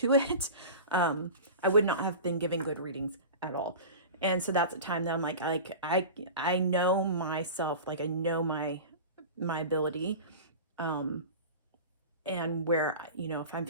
it. I would not have been giving good readings at all. And so that's a time that I'm like I know myself, like I know my ability, and where, if I'm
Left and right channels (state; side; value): inverted; both; correlation -0.32